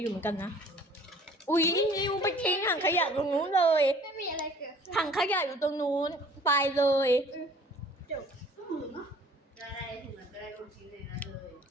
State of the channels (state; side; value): normal; both; correlation 0.52